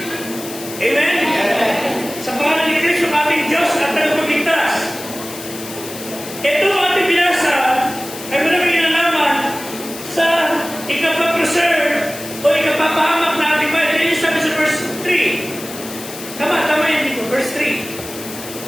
Amen? Sa pangalan ni Kristo, ating Diyos at tagapagligtas. Ito ang ating binasa ay maraming kinalaman sa ikapapreserve o ikapapahamak na ating bayan. Kaya sabi sa verse 3. Tama yun dito, verse 3.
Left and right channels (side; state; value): left; noise; hiss, 12 dB below the sound